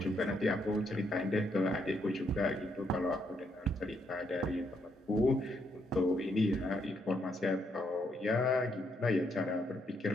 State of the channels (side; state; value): both; normal; correlation 0.75